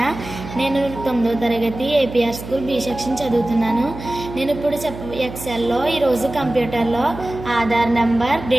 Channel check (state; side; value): noise; right; hum, 12 dB below the sound